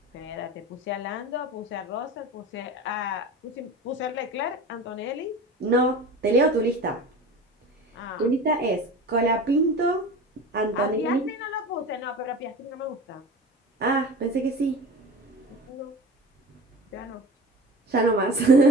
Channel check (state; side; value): normal; both; correlation 0.34